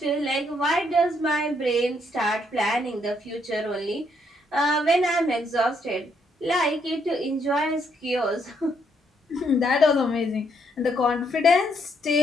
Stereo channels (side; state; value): both; normal; correlation 0.73